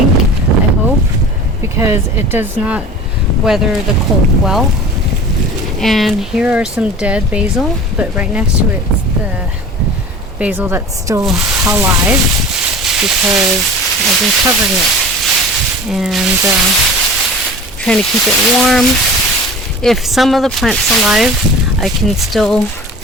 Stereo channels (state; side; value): normal; both; correlation 0.39